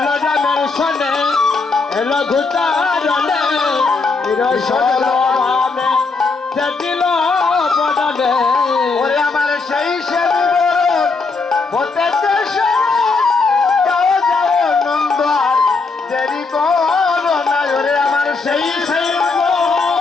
রামের শোনে এলো ঘুচারণে রসল ভাবে সেদিল পড়ানে ওরে আমার সেই সে বিবরণ হতেছে স্মরণ। যাও যাও নন্দ আর দেরি করো না ওরে আমার সেই সেই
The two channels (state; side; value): quieter; right; 4.2 dB